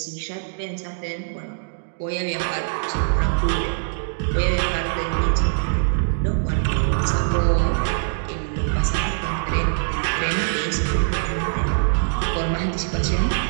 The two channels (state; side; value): silent; left; digital silence